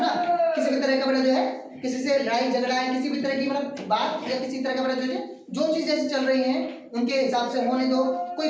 किसी भी तरह का बड़ा जो है किसी से लड़ाई झगड़ा है, किसी भी तरह की मतलब बात या किसी तरह का मतलब जो चीज जैसे चल रही है उनके हिसाब से होने दो।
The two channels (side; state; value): both; identical; correlation 1.00